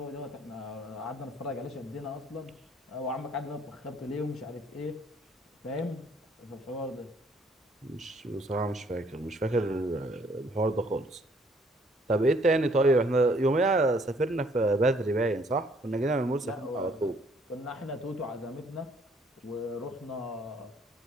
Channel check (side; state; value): both; normal; correlation 0.63